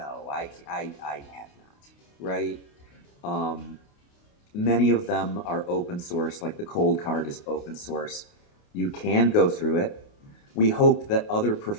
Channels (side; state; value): right; late; 28 ms